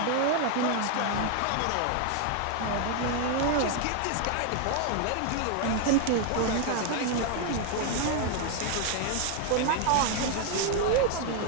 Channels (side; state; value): both; different; correlation 0.01